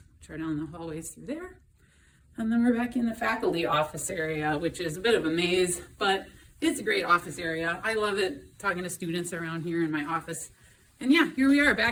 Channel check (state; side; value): identical; both; correlation 1.00